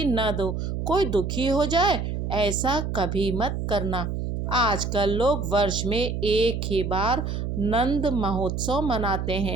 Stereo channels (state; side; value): noise; right; hum, 3 dB below the sound